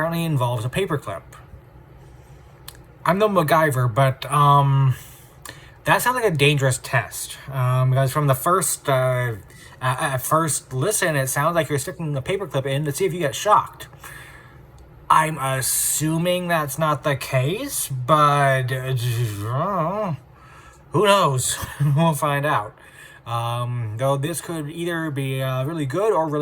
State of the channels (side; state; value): both; identical; correlation 1.00